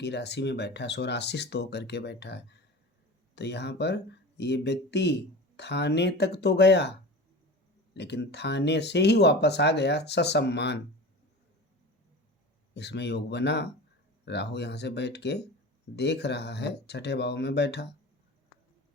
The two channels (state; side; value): normal; both; correlation 0.33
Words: राशि में बैठा है, स्वराशिस्थ होकर के बैठा है। तो यहाँ पर ये व्यक्ति थाने तक तो गया, लेकिन थाने से ही वापस आ गया ससम्मान। इसमें योग बना, राहु यहाँ से बैठ के देख रहा है, छठे भाव में बैठा,